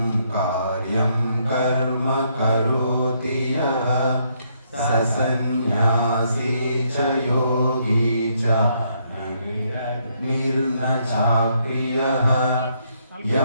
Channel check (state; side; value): inverted; both; correlation -0.73